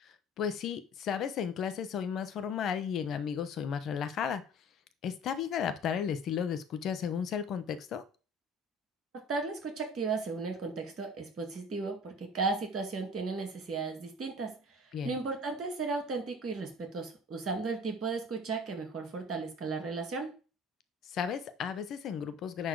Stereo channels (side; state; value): both; normal; correlation 0.45